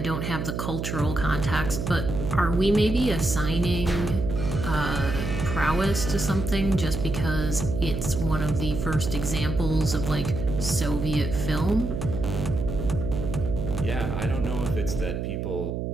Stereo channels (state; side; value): noise; right; hum, 3 dB below the sound